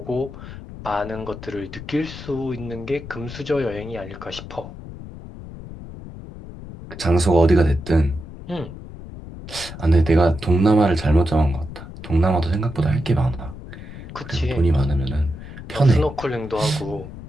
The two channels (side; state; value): left; noise; rumble, 13 dB below the sound